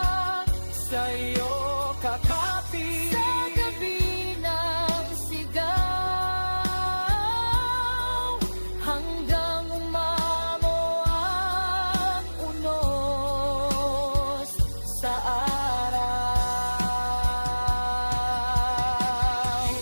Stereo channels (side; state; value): both; inverted; correlation -1.00